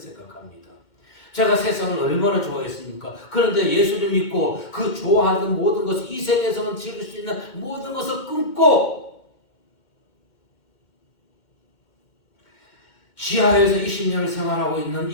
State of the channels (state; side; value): late; right; 2.2 ms